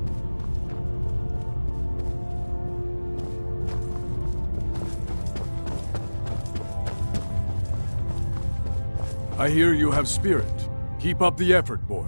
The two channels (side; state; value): both; inverted; correlation -1.00